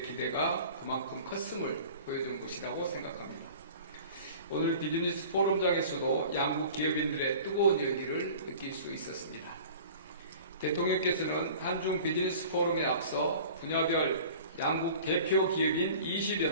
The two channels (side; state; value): both; inverted; correlation -0.43